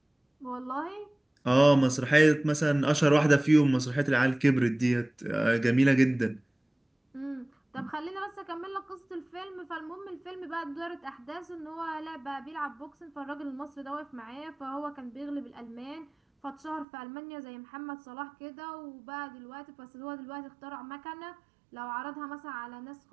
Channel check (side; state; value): left; drops out; at 16.9 s